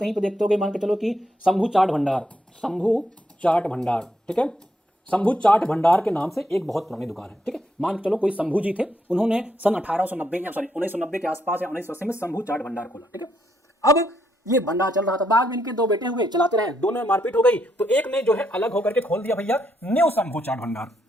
पे देखते होगे, मान के चलो कि शंभू चाट भंडार, शंभू चाट भंडार। ठीक है, शंभू चाट भंडार के नाम से एक बहुत पुरानी दुकान है। ठीक है, मान के चलो कोई शंभू जी थे, उन्होंने सन 1890 या सॉरी 1990 के आसपास या 1980 में शंभू चाट भंडार खोला। ठीक है, अब ये भंडार चल रहा था, बाद में इनके दो बेटे हुए, चलाते रहे, दोनों में मारपीट हो गई, तो एक ने जो है अलग होकर के खोल दिया भैया न्यू शंभू चाट भंडार।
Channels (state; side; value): normal; both; correlation 0.77